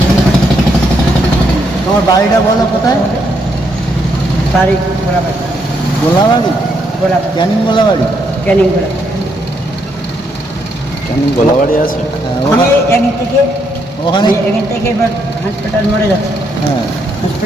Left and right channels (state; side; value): normal; both; correlation 0.76